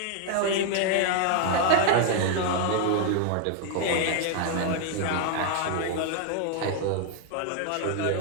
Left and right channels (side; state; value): both; different; correlation 0.00